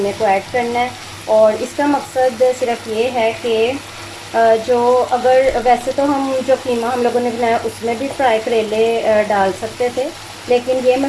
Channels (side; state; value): both; identical; correlation 1.00